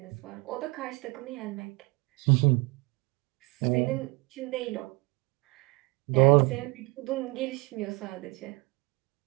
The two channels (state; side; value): quieter; left; 26.8 dB